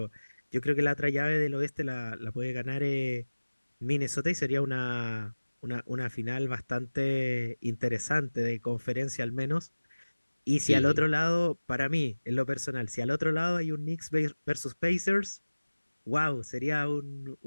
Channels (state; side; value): inverted; both; correlation -1.00